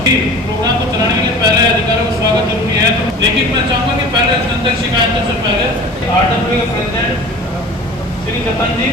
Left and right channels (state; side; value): normal; both; correlation 0.40